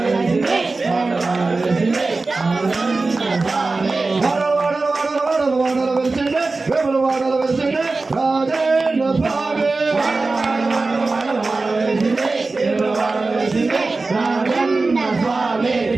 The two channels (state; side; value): quieter; left; 3.6 dB